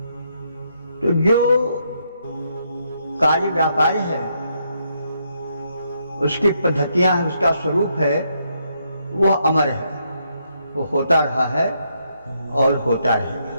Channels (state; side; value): inverted; both; correlation -0.76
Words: तो जो कार्य व्यापार है, उसकी पद्धतियां हैं, उसका स्वरूप है, वह अमर है, वो होता रहा है और होता रहेगा।